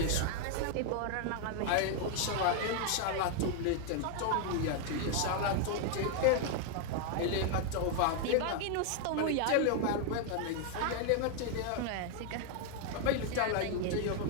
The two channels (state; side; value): different; both; correlation 0.00